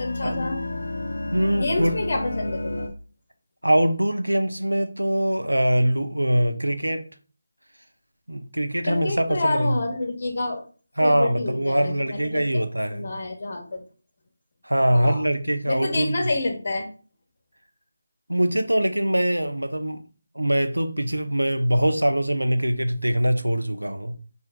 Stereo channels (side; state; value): both; inverted; correlation -0.97